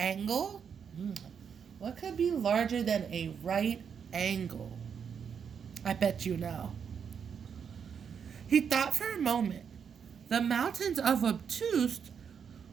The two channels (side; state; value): left; quieter; 7.1 dB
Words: What could be larger than a right angle? I bet you know. He thought for a moment. The mountains of Obtuse